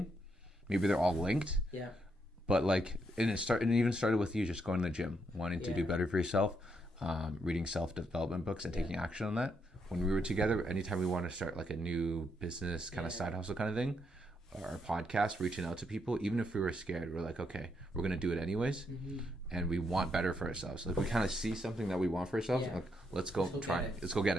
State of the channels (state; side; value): normal; both; correlation 0.78